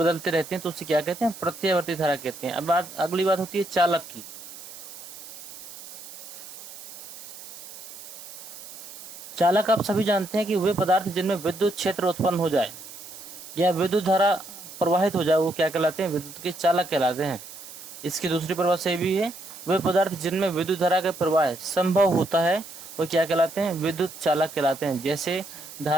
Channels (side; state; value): right; noise; hiss, 14 dB below the sound